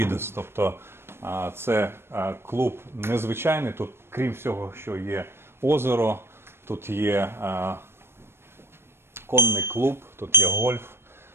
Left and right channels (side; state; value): left; late; 0.12 ms